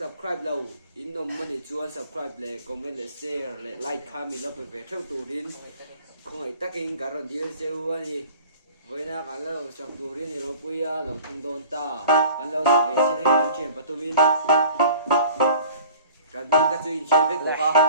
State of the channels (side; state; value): both; inverted; correlation -0.46